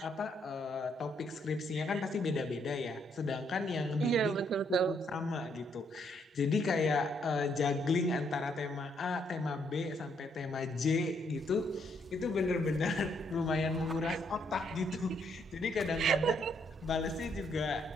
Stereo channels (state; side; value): normal; both; correlation 0.72